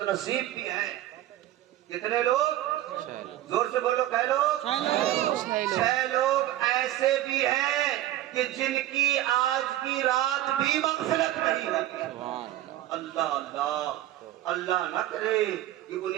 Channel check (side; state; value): left; quieter; 14.0 dB